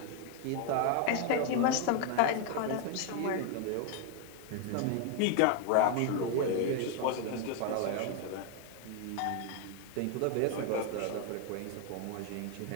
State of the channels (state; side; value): different; both; correlation 0.01